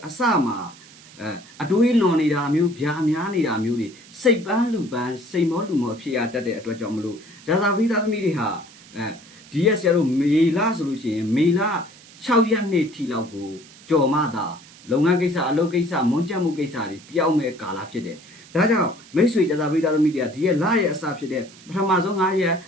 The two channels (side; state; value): right; noise; hiss, 22 dB below the sound